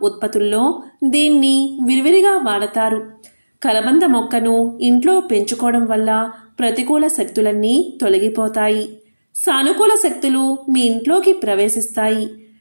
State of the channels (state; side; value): inverted; both; correlation -1.00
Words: ఉత్పత్తుల్లో దీన్ని విరివిరిగా వాడతారు. కలబంద మొక్కను ఇంట్లో పెంచుకోవడం వల్ల ప్రతికూల శక్తులన్నీ తొలగిపోతాయి. సానుకూల శక్తులు మీ ఇంట్లోకి ప్రవేశిస్తాయి.